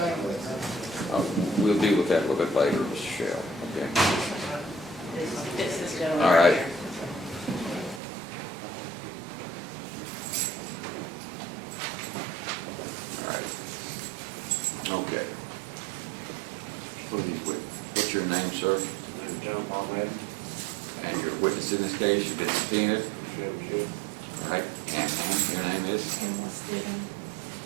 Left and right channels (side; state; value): left; drops out; at 8.0 s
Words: We'll deal with that a little bit later, Mr. Shell, okay? This is gentleman. All right. here. All right. Okay. What are these witnesses? What's your name, sir? John Paul Madden, And your witness in this case, you've been subpoenaed? ShelbyShell. All right. And ma'am, your name is? Pamela Stidham.